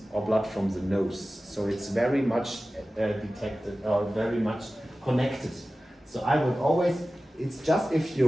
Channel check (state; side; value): normal; both; correlation 0.96